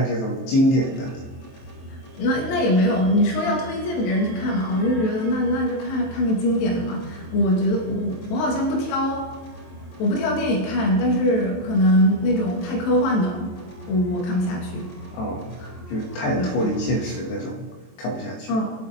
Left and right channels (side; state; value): right; late; 23 ms